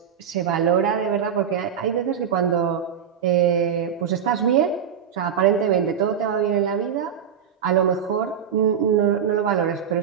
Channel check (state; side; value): quieter; left; 8.2 dB